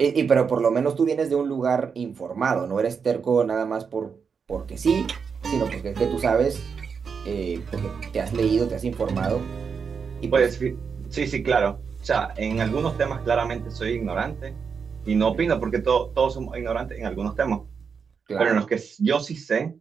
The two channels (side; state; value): left; quieter; 6.0 dB